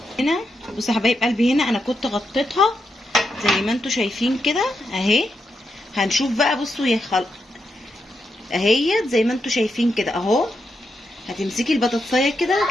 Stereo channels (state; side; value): normal; both; correlation 0.84